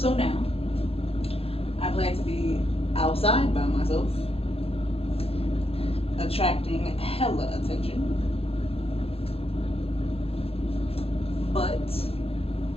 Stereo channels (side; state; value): right; late; 0.28 ms